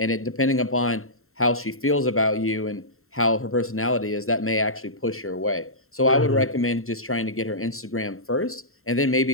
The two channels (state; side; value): late; right; 0.62 ms